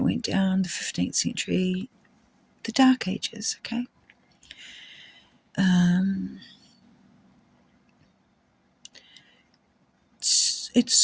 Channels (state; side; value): identical; both; correlation 1.00